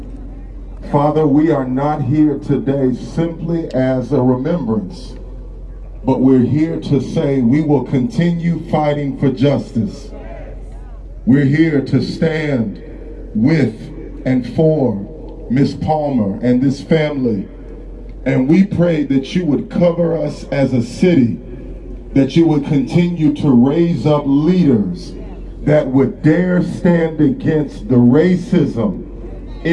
Father, we are not here today simply as a remembrance, but we're here to say we will continue fighting for justice. We're here to stand with and for Miss Palmer and this family. And we pray that you would cover us as a city, that you would continue to raise up leaders that would dare stand against the racism,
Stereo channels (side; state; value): both; identical; correlation 1.00